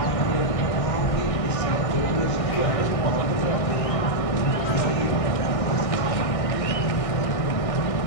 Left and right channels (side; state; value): right; late; 1.6 ms